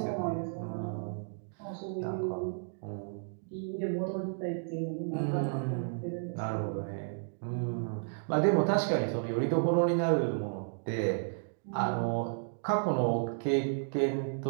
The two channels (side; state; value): left; silent; digital silence